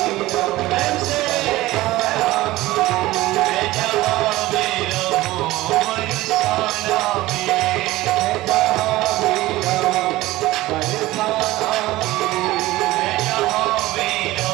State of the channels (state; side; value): quieter; left; 17.8 dB